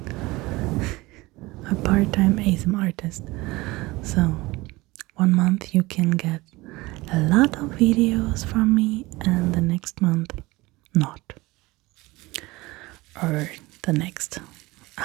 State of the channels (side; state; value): left; quieter; 21.2 dB